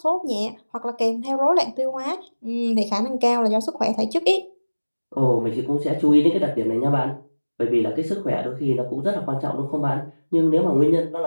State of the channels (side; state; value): both; inverted; correlation -1.00